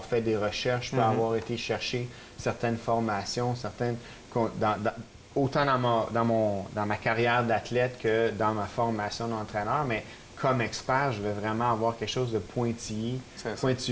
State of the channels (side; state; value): both; identical; correlation 1.00